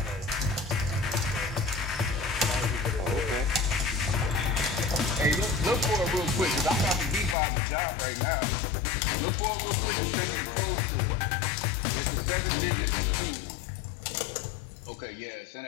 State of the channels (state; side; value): drops out; right; at 7.4 s